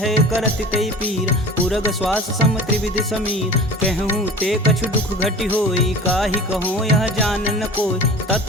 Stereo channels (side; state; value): both; normal; correlation 0.39